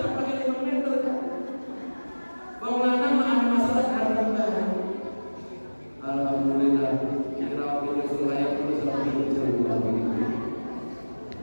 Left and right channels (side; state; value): both; inverted; correlation -1.00